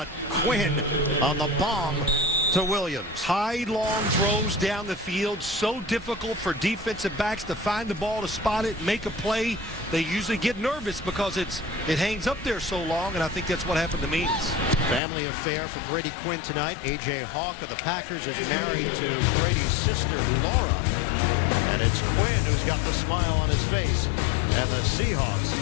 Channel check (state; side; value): drops out; right; at 15.0 s